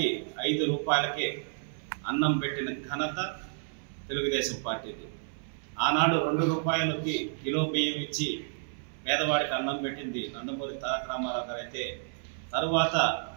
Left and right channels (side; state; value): left; silent; 57 dB below the other